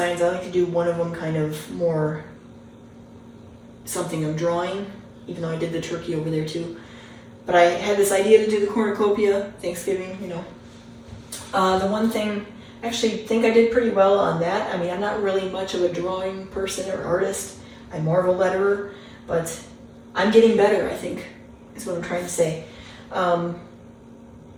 I like to do one of them kind of more something I'm drawing, even though I did the turkey over there too. But I had this idea to do the cornucopia, Thanksgiving, you know. The one thing, I actually think I did pretty well on that. I mean, I'm not really much of a drawing person or artist. I'm more of a letterer, but I'm getting better, I think, is what I'm trying to say. The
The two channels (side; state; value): both; identical; correlation 1.00